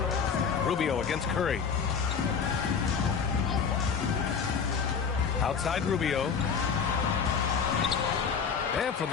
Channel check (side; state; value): right; quieter; 6.2 dB